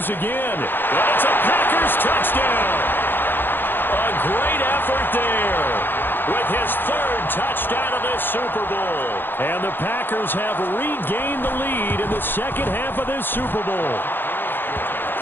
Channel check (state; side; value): late; right; 0.098 ms